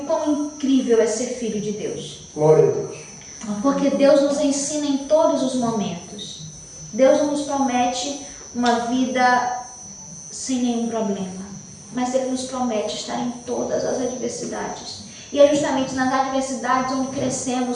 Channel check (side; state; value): both; identical; correlation 1.00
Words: quão incrível é ser filho de Deus. Glória a Deus. Porque Deus nos ensina em todos os momentos. Deus não nos promete uma vida sem nenhum problema, mas Ele nos promete estar em todas as adversidades. E é justamente nas adversidades onde